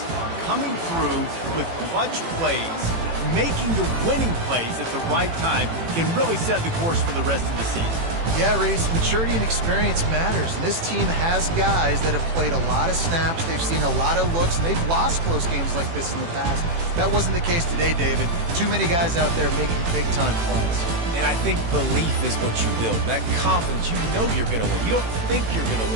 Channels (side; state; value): left; late; 18 ms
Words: Coming through with clutch plays, making the winning plays at the right time can really set the course for the rest of the season. Yeah, Reese, maturity and experience matters. And this team has guys that have played a lot of snaps. They've seen a lot of looks, and they've lost close games like this in the past. That wasn't the case today, David. Too many guys out there making big-time plays. And I think belief is what you build. That confidence, you know you're going to win. You don't think you're going to